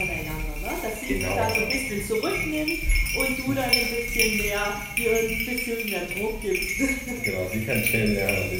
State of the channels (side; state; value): both; identical; correlation 1.00